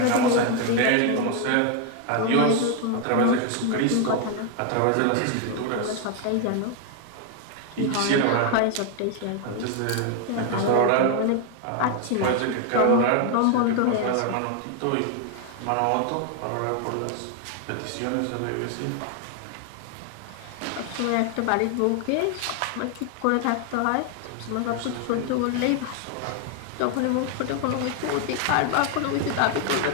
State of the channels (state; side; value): different; both; correlation 0.01